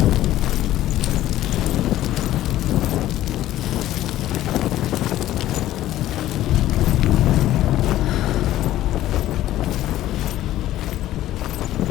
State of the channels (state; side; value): quieter; right; 14.0 dB